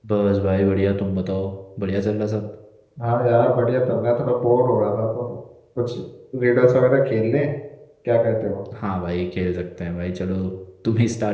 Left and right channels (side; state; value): both; identical; correlation 1.00